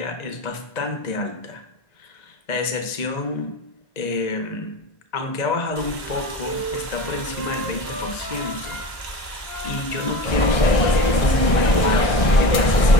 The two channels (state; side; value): late; right; 1.6 ms